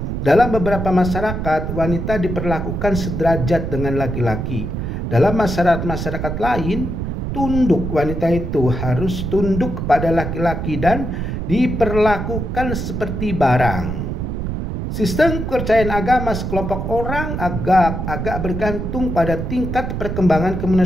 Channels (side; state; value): right; noise; rumble, 3 dB below the sound